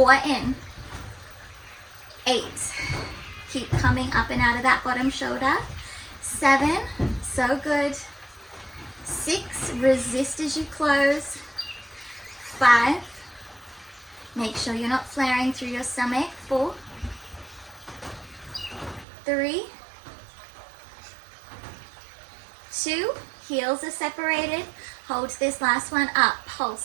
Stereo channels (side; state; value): left; drops out; at 19.1 s